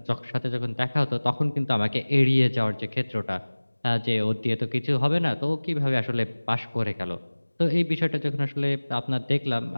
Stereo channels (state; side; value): inverted; both; correlation -1.00